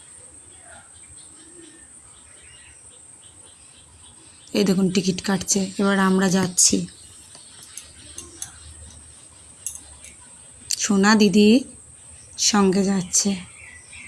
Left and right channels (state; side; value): identical; both; correlation 1.00